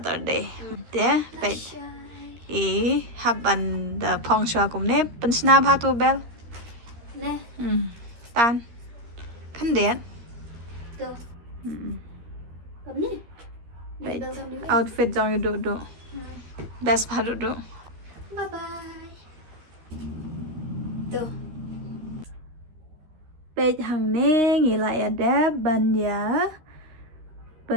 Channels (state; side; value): late; left; 13 ms